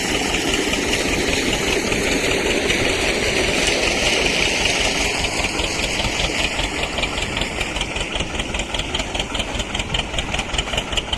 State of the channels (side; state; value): both; identical; correlation 1.00